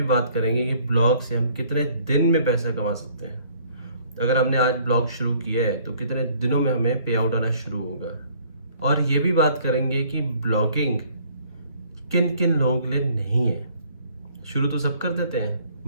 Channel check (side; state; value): both; inverted; correlation -0.58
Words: बात करेंगे कि ब्लॉग से हम कितने दिन में पैसा कमा सकते हैं। अगर हमने आज ब्लॉग शुरू किया है तो कितने दिनों में हमें पे आउट आना शुरू होगा। और ये भी बात करेंगे कि ब्लॉगिंग किन किन लोगों के लिए नहीं है। शुरू तो सब कर देते हैं